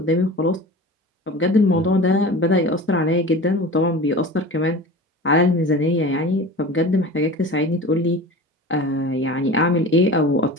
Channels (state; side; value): normal; both; correlation 0.35